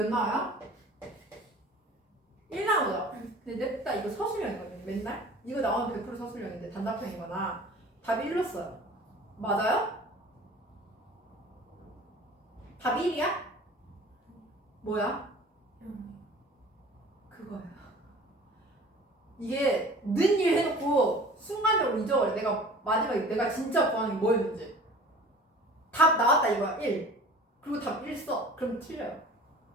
나와요? 1 나오죠. 근데 냅다 이거 서술형이거든요. 맨날 이거 나오면 100% 서술형인데 단답형이거나 답이 1로 써요. 맞아요? 답이 1이야? 뭐야? 그거야. 이게 는 일 해놓고 순간적으로 잊어버려. 내가 마지막에 내가 진짜 구하는 게 뭐였는지. 답 나왔다 이거야. 1. 그리고 답 1 써. 그럼 틀려요.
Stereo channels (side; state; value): both; normal; correlation 0.44